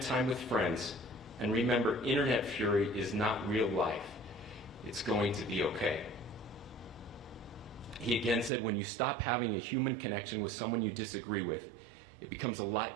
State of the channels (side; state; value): left; drops out; at 8.5 s